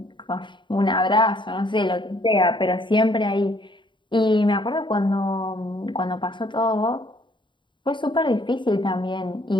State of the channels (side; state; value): right; late; 0.23 ms